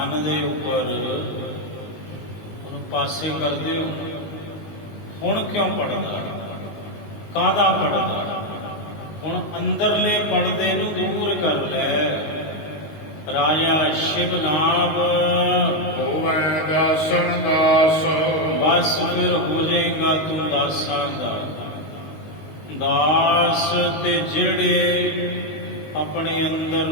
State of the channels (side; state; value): right; late; 19 ms